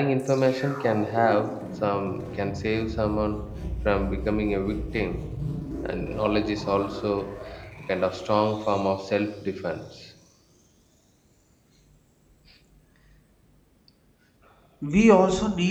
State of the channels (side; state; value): both; identical; correlation 1.00